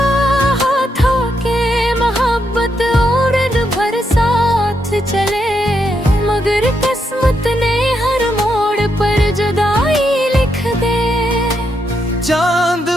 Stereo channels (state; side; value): normal; both; correlation 0.80